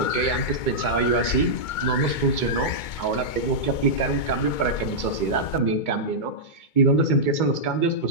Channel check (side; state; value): right; late; 2.2 ms